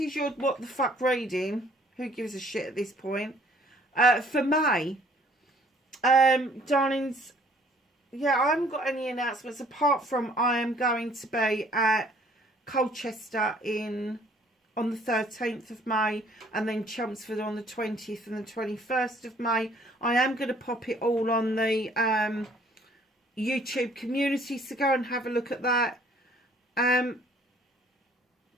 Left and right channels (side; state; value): both; normal; correlation 0.59